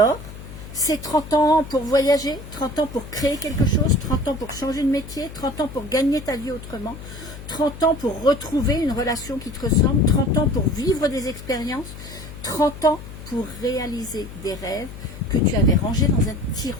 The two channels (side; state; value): left; noise; hum, 13 dB below the sound